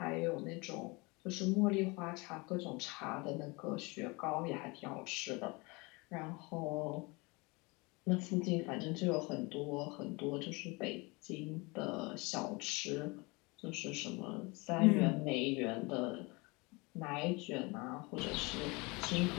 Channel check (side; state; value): right; quieter; 26.6 dB